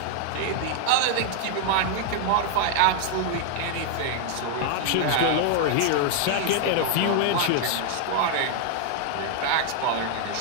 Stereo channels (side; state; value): both; different; correlation 0.00